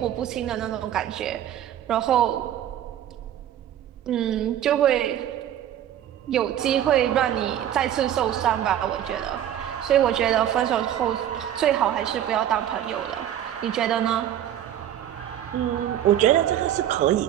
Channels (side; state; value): left; quieter; 11.1 dB